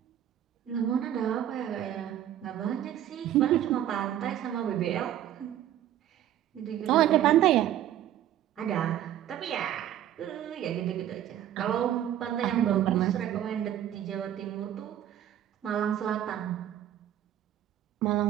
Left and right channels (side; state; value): left; quieter; 11.5 dB